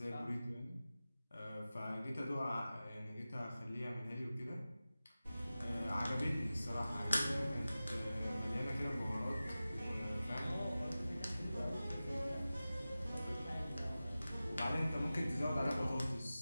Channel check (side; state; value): both; inverted; correlation -0.95